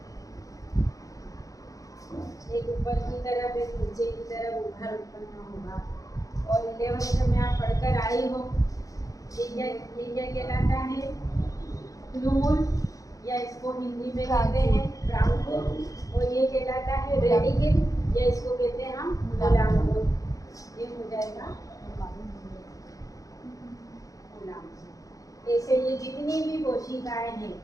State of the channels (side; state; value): right; late; 0.17 ms